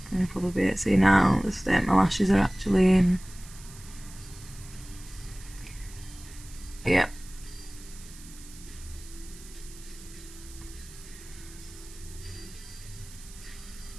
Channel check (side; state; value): right; noise; hiss, 18 dB below the sound